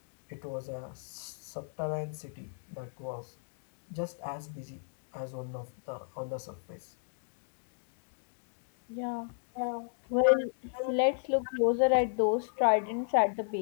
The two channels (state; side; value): silent; right; digital silence